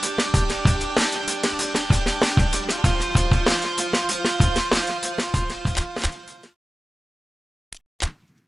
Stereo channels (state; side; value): normal; both; correlation 0.96